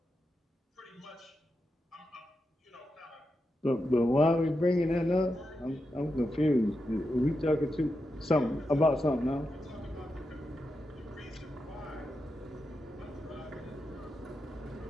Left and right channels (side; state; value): both; normal; correlation 0.87